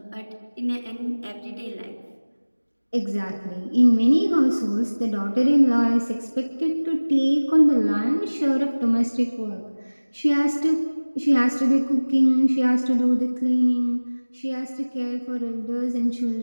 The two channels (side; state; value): both; inverted; correlation -1.00